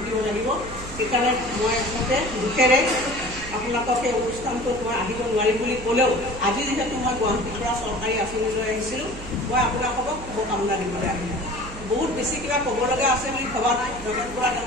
লাগিব। সেইকাৰণে মই আচলতে দুখেৰে আপোনালোকক এই অনুষ্ঠানটোত মই আহিব নোৱাৰিম বুলি ক'লেও আজি যিহেতু মই গুৱাহাটীৰ পৰা চৰকাৰী আঁচনি লৈ আহিছিলোঁ, মই আপোনালোকক শুভকামনা দিবলৈ আহিলোঁ। বহুত বেছি কিবা ক'ব লগা আছে বুলি ভবা নাই। নগেন বৰা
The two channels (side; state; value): right; noise; hum, 13 dB below the sound